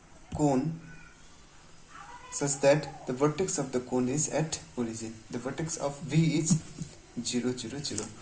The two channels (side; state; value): both; identical; correlation 1.00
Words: cone such that the vertex of the cone is at origin. The vertex of V is 0 0 0.